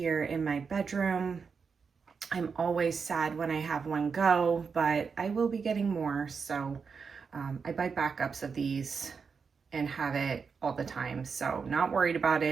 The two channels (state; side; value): quieter; left; 5.6 dB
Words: in my bedroom. I'm always sad when I have one go, but I will be getting more. So I buy backups of these and have it all the time. So not worried about